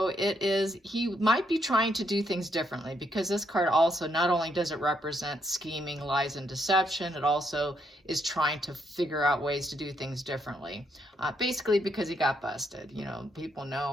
it is, he might be trying to do things differently because this card also, not only does it represent scheming, lies, and deception, it also is trying to figure out ways to do things differently. Basically because he got busted. People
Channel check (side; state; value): both; normal; correlation 0.75